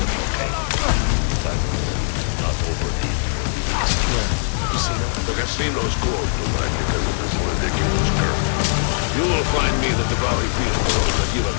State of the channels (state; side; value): silent; right; digital silence